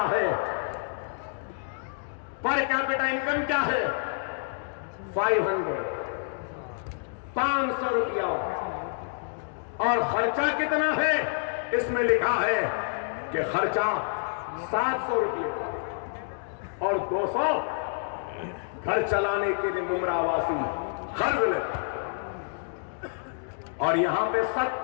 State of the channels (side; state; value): right; silent; digital silence